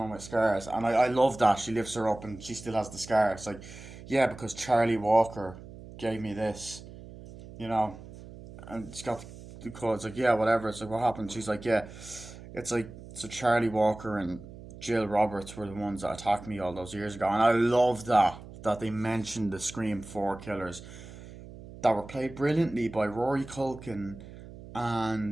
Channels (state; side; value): noise; right; hum, 16 dB below the sound